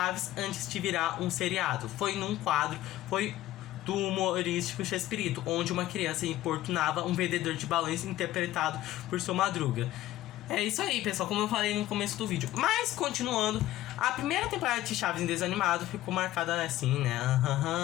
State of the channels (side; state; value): right; quieter; 14.8 dB